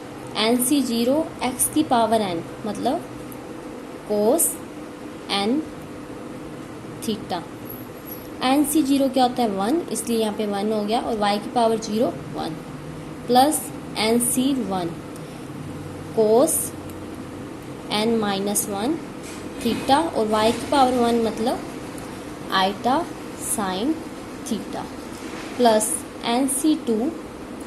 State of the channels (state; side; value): identical; both; correlation 1.00